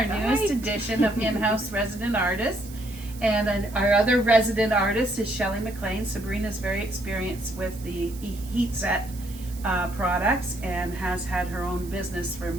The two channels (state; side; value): noise; right; hiss, 18 dB below the sound